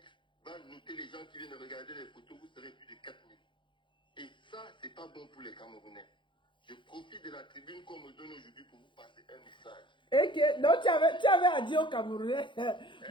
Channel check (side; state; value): right; late; 0.23 ms